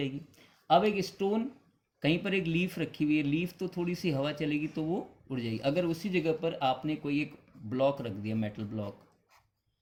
अब एक स्टोन, कहीं पर एक लीफ रखी हुई है, लीफ तो थोड़ी सी हवा चलेगी तो वो उड़ जाएगी। अगर उसी जगह पर आपने कोई एक ब्लॉक रख दिया, मेटल ब्लॉक,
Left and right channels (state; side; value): identical; both; correlation 1.00